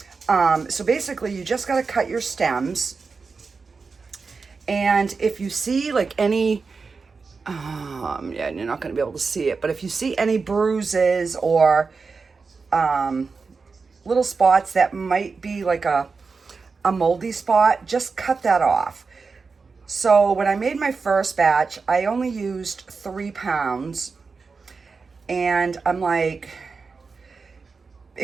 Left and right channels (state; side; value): quieter; left; 4.7 dB